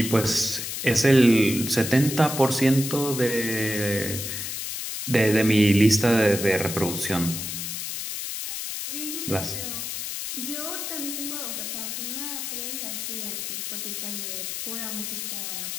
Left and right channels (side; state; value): left; noise; hiss, 5 dB below the sound